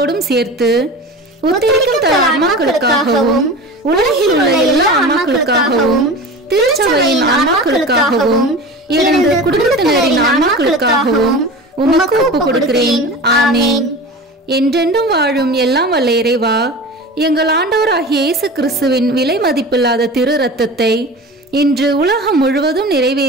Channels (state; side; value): normal; both; correlation 0.33